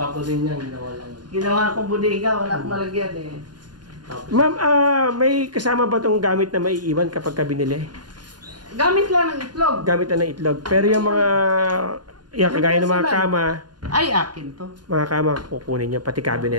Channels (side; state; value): left; late; 0.70 ms